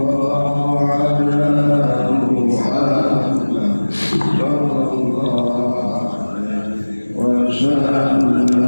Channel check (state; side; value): inverted; both; correlation -1.00